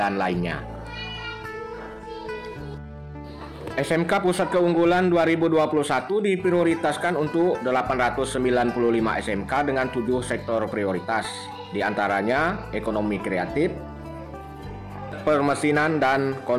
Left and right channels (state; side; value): identical; both; correlation 1.00